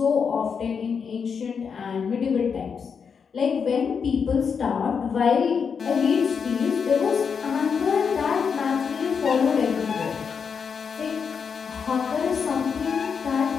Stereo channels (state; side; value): quieter; right; 6.3 dB